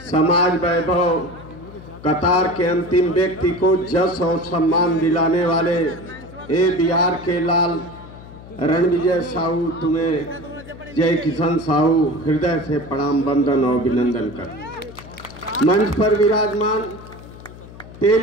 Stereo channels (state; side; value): noise; left; hum, 17 dB below the sound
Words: समाज वैभव, कतार के अंतिम व्यक्ति को जस और सम्मान दिलाने वाले ए बिहार के लाल रणविजय साहू, तुम्हें जय किशन साहू हृदय से प्रणाम, वंदन और अभिनंदन कर। मंच पर विराजमान